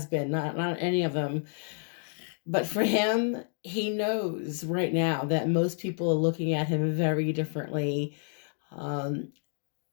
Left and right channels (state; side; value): silent; right; digital silence